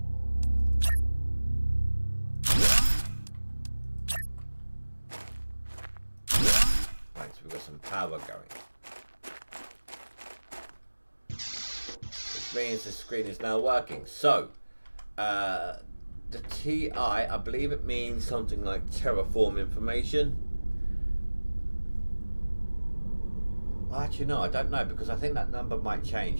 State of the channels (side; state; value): both; inverted; correlation -1.00